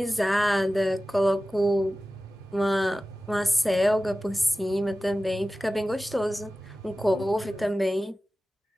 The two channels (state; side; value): normal; both; correlation 0.95